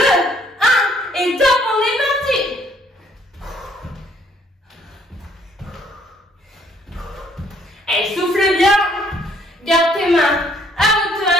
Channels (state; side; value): normal; both; correlation 0.64